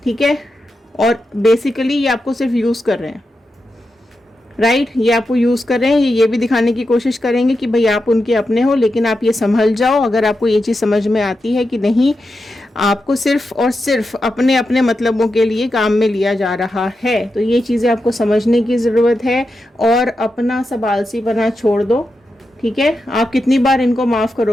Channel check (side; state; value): both; normal; correlation 0.88